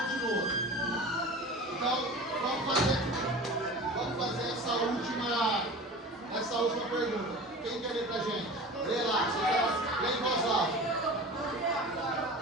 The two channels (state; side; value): normal; both; correlation 0.36